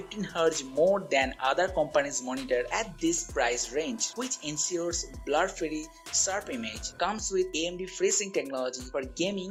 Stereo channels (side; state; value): both; identical; correlation 1.00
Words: Hz more than other companies' monitor at this price range, which ensures blur-free, sharp image. Comes with AMD FreeSync technology for